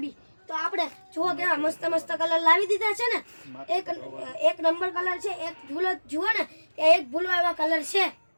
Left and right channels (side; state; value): both; inverted; correlation -1.00